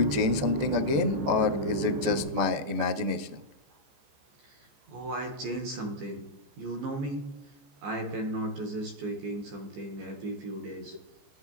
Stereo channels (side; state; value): left; late; 14 ms